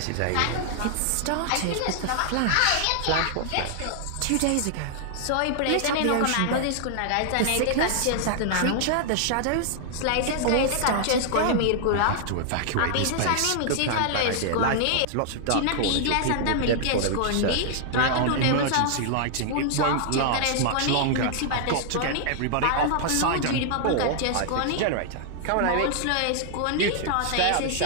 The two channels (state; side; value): different; both; correlation -0.01